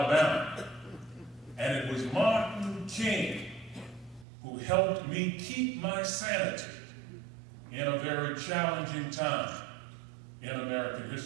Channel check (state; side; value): drops out; left; at 4.2 s